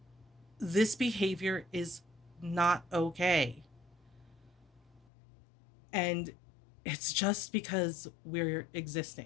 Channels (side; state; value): right; drops out; at 5.1 s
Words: this behavior is not okay. And it's just because we're